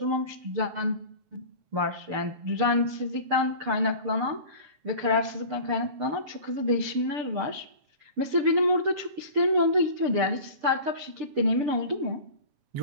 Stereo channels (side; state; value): left; late; 6.8 ms